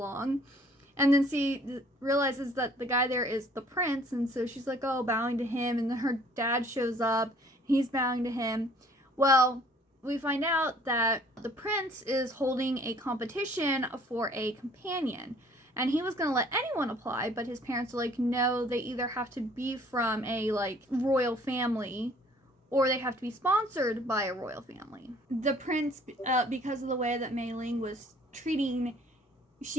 and then she realizes that the guy there is the prince, and so she's like, oh, bowing to him, and then her dad shows up, he's bowing to him. Well, we find out that the prince is holding a competition for a companion, and he was going to let anyone apply, but his parents are like, no, they either have to be from a like royal family or they have to be sponsored by a royal family. The prince, because of the way that Mei Ling was treating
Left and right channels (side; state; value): both; normal; correlation 0.57